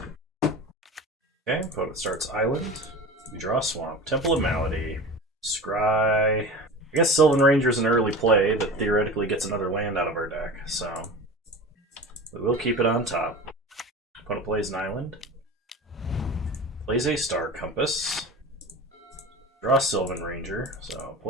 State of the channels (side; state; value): both; normal; correlation 0.33